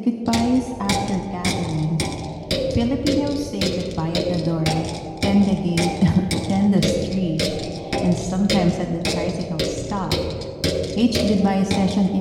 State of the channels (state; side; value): identical; both; correlation 1.00